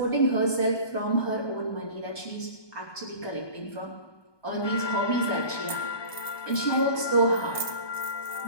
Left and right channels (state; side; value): late; right; 1.2 ms